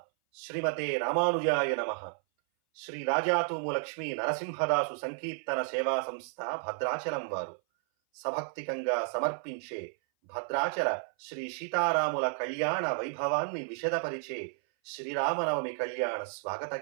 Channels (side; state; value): left; silent; 56 dB below the other